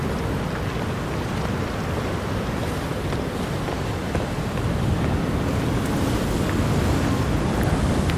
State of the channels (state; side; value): identical; both; correlation 1.00